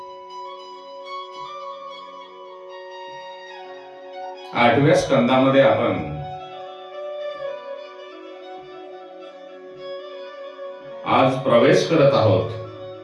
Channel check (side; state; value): both; identical; correlation 1.00